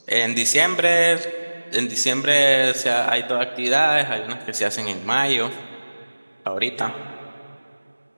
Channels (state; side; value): inverted; both; correlation -1.00